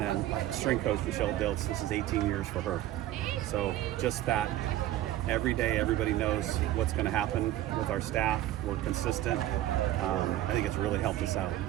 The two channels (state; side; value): quieter; left; 14.1 dB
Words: then strength coach Michelle Diltz, this is 18 years for her. So just that, every day everybody knows what's going to happen with our staff. We're consistent. I think it's really helped us out.